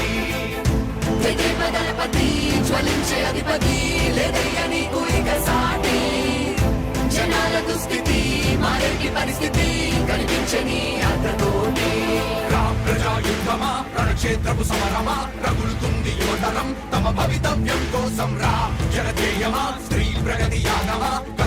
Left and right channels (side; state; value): both; identical; correlation 1.00